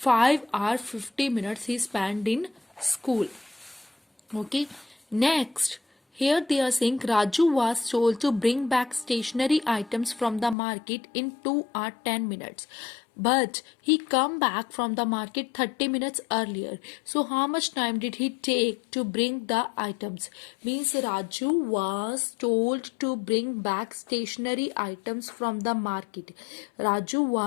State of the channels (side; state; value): right; drops out; at 10.6 s